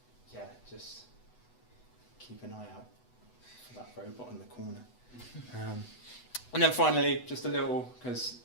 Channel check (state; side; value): late; right; 8.1 ms